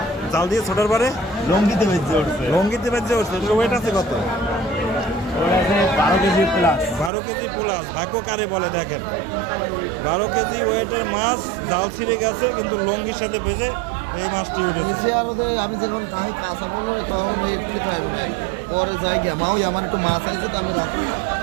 জাল দিয়ে ছোটার পরে লঙ্গিতে বেঁচে উঠছে লঙ্গিতে বেঁচে উঠছে ওয়েট আছে কত? ওরা আছে 12 কেজি প্লাস 12 কেজি প্লাস। ভাগ্য কারে বলে দেখেন, 12 কেজি ওয়েটের মাছ জাল ছিঁড়ে গেছে কিন্তু লঙ্গির সাথে ভেজে এই মাছটি উঠেছে। আমি যখন তাই কাঁচা বললো তখন একটু খাইব ভাই পরে যাই গিয়া মাও আমার একটু মাছ আছে তো আমি রাখি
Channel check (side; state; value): left; drops out; at 7.1 s